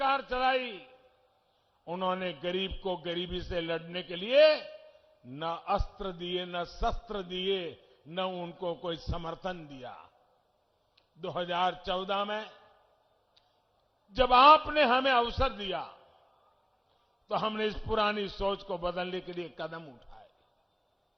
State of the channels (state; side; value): identical; both; correlation 1.00